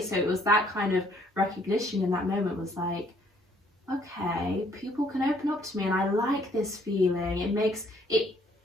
So it was that kind of recognition in that moment, was like, okay, people can open up to me, and I like this feeling. It makes it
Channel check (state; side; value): normal; both; correlation 0.64